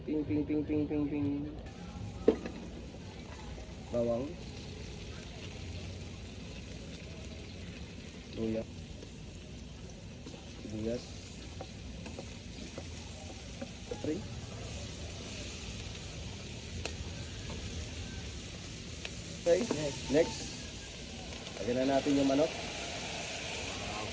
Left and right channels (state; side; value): identical; both; correlation 1.00